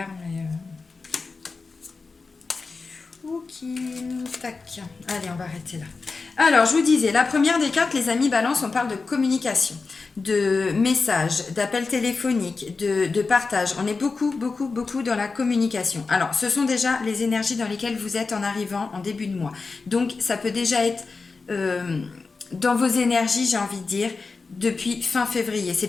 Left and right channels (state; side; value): quieter; right; 4.3 dB